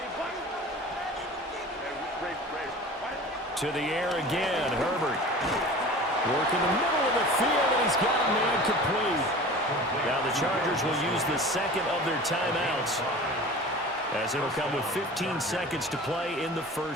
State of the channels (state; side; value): normal; both; correlation 0.39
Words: To the air again, Herbert. Working the middle of the field, and he's got a man complete. Now the Chargers will use the second of their timeouts as it'll come with 15 seconds to play in the